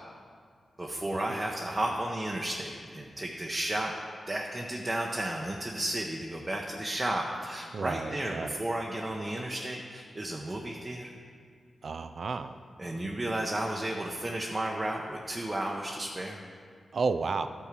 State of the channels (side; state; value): both; normal; correlation 0.94